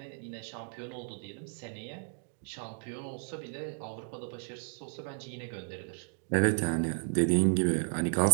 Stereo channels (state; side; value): silent; left; 56 dB below the other